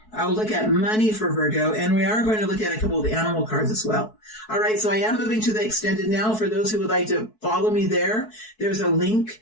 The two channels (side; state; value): right; late; 4.6 ms